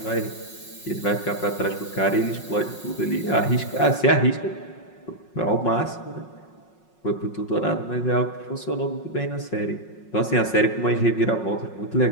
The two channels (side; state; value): right; late; 5.5 ms